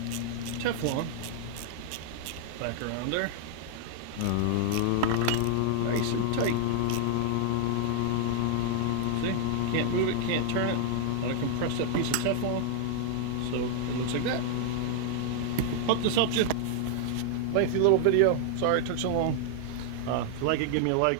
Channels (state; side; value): different; both; correlation 0.00